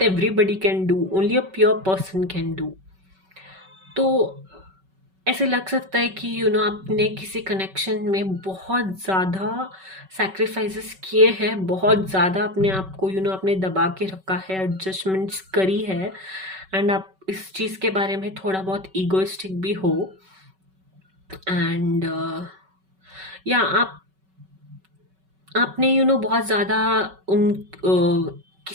can do, only a pure person can do। तो ऐसे लग सकता है कि आपने किसी कनेक्शन में बहुत ज़्यादा सैक्रिफाइसेस किए हैं, बहुत ज़्यादा अपने आप को आपने दबा के रखा है, एडजस्टमेंट्स करी है, एंड आप इस चीज़ के बारे में थोड़ा बहुत ईगोइस्टिक भी हो। एंड या आपने बहुत ज़्यादा उन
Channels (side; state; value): left; late; 5.3 ms